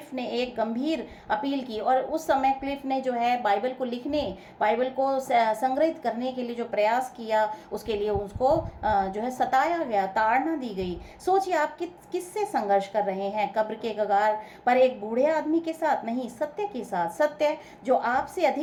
ने एक गंभीर अपील की, और उस समय क्लिफ ने जो है बाइबल को संग्रहित करने के लिए जो प्रयास किया, उसके लिए उसको जो है सताया गया, ताड़ना दी गई। सोचिए आप किससे संघर्ष कर रहे हैं? कब्र के कगार पर एक बूढ़े आदमी के साथ नहीं, सत्य के साथ। सत्य जो आपसे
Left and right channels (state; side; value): identical; both; correlation 1.00